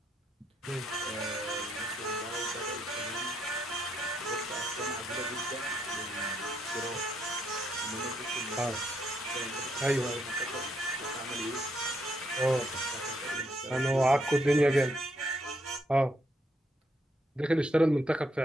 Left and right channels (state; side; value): normal; both; correlation 0.76